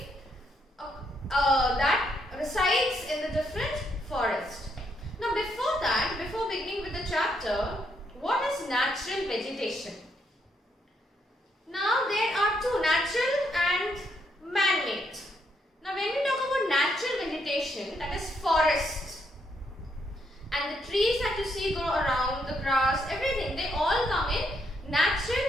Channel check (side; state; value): both; normal; correlation 0.76